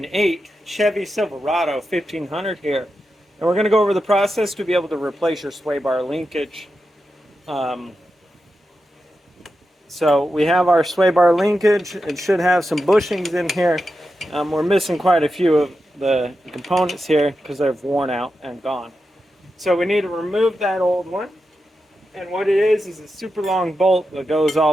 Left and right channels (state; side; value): normal; both; correlation 0.89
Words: Chevy Silverado 1500 here. And we're going to go over the process to be able to replace your sway bar linkage. So we have our sway bar linkage. It should have some bushings in here. We're missing quite a few of the components here because they've worn out and gone. So we need to remove that old one. And what it is a super long bolt that goes